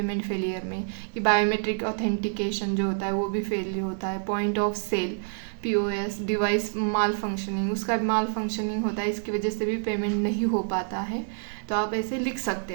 फेलियर में, कि बायोमेट्रिक ऑथेंटिकेशन जो होता है वो भी फेल होता है, point of sale POS device malfunctioning, उसका भी माल फंक्शनिंग होता है, इसकी वजह से भी पेमेंट नहीं हो पाता है। तो आप ऐसे लिख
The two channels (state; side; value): silent; left; digital silence